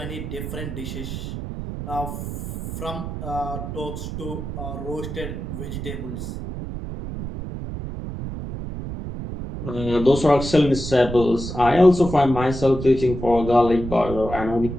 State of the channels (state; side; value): noise; right; rumble, 7 dB below the sound